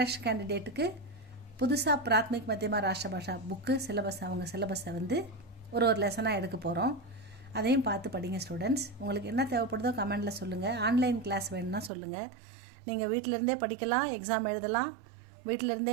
கேண்டிடேட்டுக்கு புதுசாக பிராத்மிக் மத்தியமா ராஷ்டிர பாஷா புக்கு சிலபஸ், அவங்க சிலபஸை ஒரு லெசனாக எடுக்க போகிறோம். அதையும் பார்த்து படிங்க ஸ்டூடெண்ட்ஸ். உங்களுக்கு என்ன தேவைப்படுதோ கமெண்டில் சொல்லுங்கள். ஆன்லைன் கிளாஸ் வேணும்னா சொல்லுங்கள். நீங்கள் வீட்டிலேருந்தே படிக்கலாம், எக்ஸாம் எழுதலாம்.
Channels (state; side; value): drops out; left; at 11.9 s